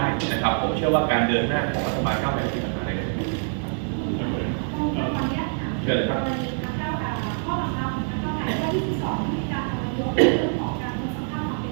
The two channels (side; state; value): left; silent; 62 dB below the other